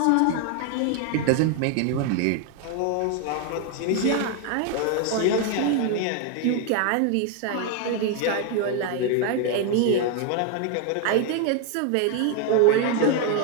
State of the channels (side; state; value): both; different; correlation 0.01